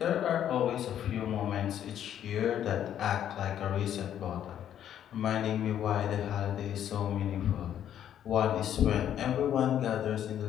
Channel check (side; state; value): right; quieter; 10.3 dB